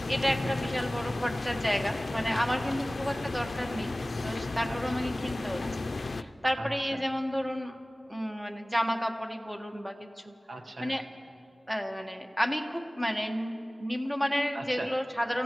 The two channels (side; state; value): both; normal; correlation 0.98